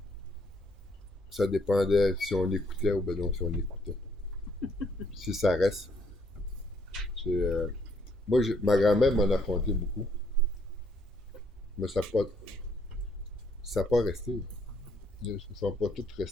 ça dépendait si on écoutait ou ben non si on écoutait. Si ça reste. Moi, ma grand-mère m'en a conté beaucoup, mais ça n'a pas resté. Ils ne sont pas tous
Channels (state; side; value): normal; both; correlation 0.69